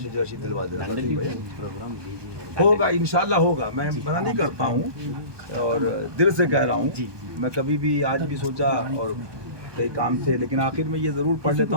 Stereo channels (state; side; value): late; left; 1.2 ms